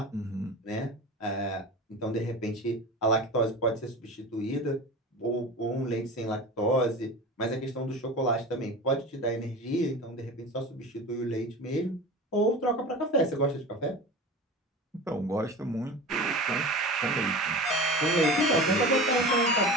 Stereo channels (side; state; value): both; normal; correlation 0.32